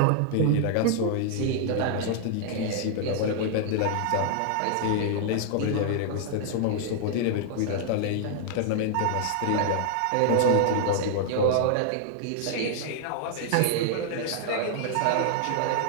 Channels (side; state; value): both; different; correlation 0.00